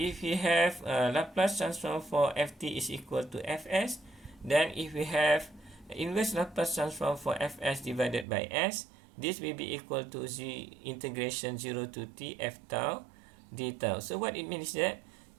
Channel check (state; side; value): drops out; left; at 8.2 s